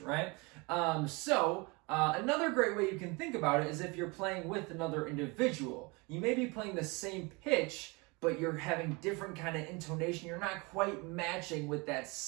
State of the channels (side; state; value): left; quieter; 27.5 dB